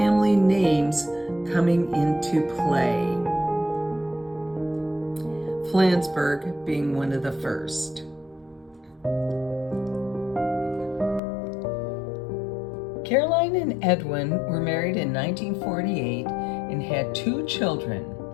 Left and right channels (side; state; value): right; drops out; at 11.2 s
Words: names coming into play, Flansburgh being one of the first. Caroline and Edwin were married in 1948 and had 2 children.